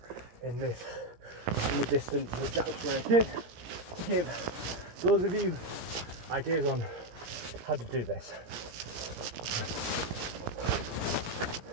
in the distance that Jack's Rake is, to give those of you ideas on how to do this.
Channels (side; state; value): left; late; 17 ms